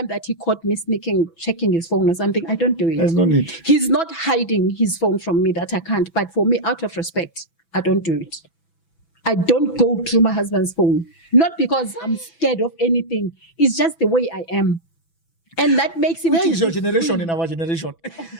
that he caught me sneaking, checking his phone or something. I don't do it. There's no need. He's not hiding his phone from me that I can't. But for me, out of respect, I don't do it. I don't go through my husband's phone. Not because I'm scared of anything. It's just the way I am. And that makes him... Where is your generation in our generation?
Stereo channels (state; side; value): late; right; 6.0 ms